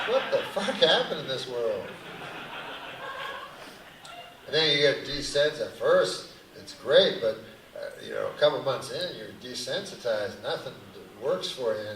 What the fuck happened in this world? And then you get desensitized. At first, it's great, but a couple months in, you're desensitized. Nothing works for you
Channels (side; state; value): both; identical; correlation 1.00